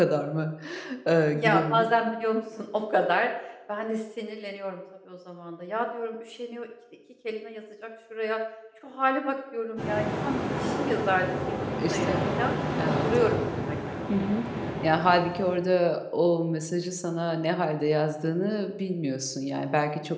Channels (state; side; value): identical; both; correlation 1.00